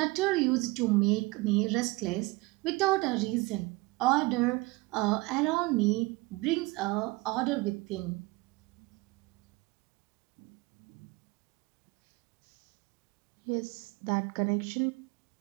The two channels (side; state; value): left; quieter; 23.2 dB